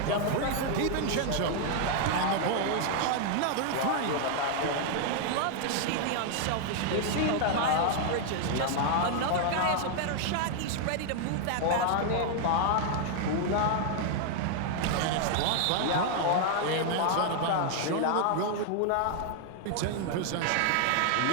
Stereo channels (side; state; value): both; different; correlation 0.00